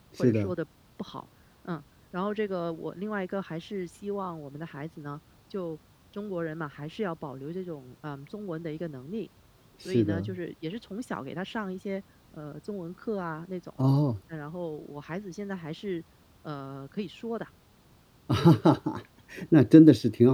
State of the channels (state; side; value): identical; both; correlation 1.00